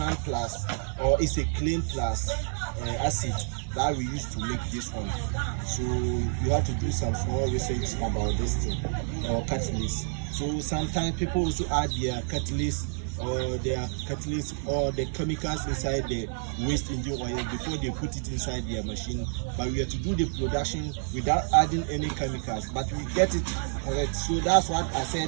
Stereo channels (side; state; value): left; silent; 59 dB below the other